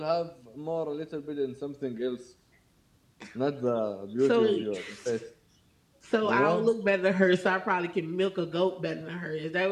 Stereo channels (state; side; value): identical; both; correlation 1.00